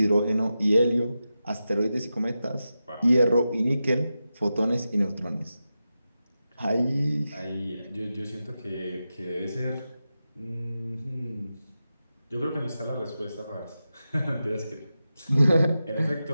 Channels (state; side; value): inverted; both; correlation -0.91